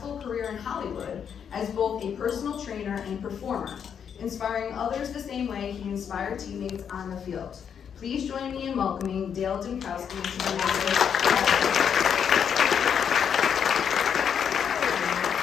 career in Hollywood as both a personal trainer and performer, inspiring others the same way he inspired teammates on the field. Please join me in welcoming Dale Dymkoski to the Masuk.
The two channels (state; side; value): quieter; right; 7.7 dB